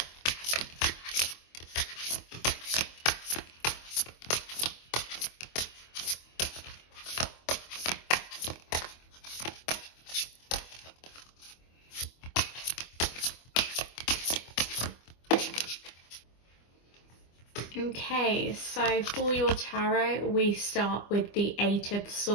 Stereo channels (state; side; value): late; right; 25 ms